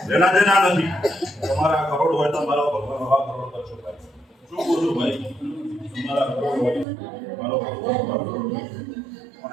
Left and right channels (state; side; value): drops out; left; at 6.9 s